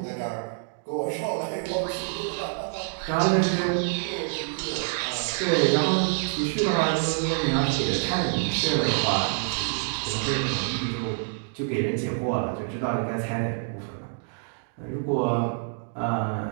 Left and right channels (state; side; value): silent; left; 60 dB below the other